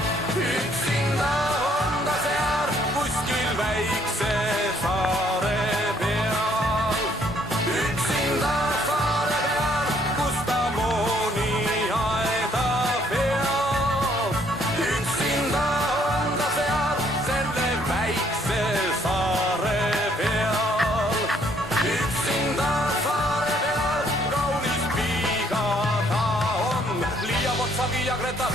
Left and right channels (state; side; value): normal; both; correlation 0.66